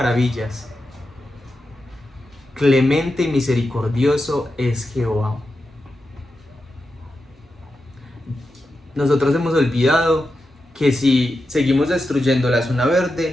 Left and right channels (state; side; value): normal; both; correlation 0.89